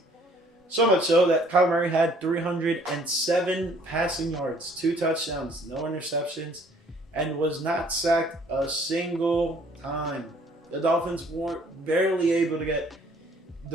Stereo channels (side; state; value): both; normal; correlation 0.59